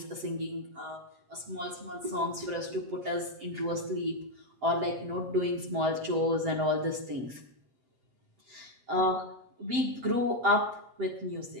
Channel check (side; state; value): left; late; 7.8 ms